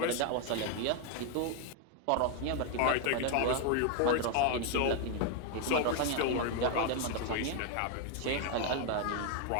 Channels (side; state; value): both; different; correlation 0.00